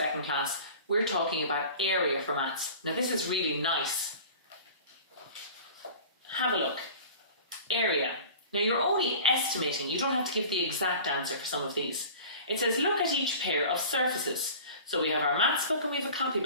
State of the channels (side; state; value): both; inverted; correlation -0.41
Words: class, we're talking about area for maths. Now this is really nice. Have a look. Area. Now you're only estimating, you don't have to give the exact answer for some of these. It says look at each pair of surfaces. So we have our maths book and we have a